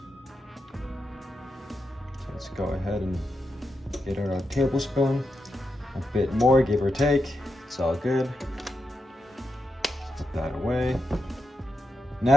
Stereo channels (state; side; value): normal; both; correlation 0.87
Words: So let's go ahead and get our tablespoon. A bit more, give or take. It's all good. Put that away.